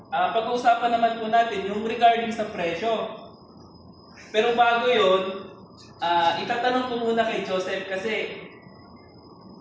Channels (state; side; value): identical; both; correlation 1.00